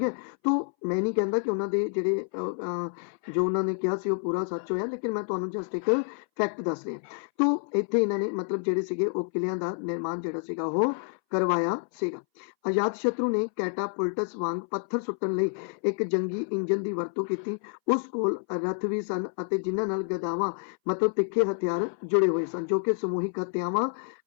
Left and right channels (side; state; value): right; silent; 59 dB below the other